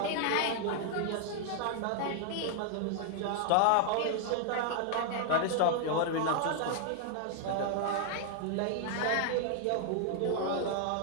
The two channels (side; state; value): both; different; correlation 0.00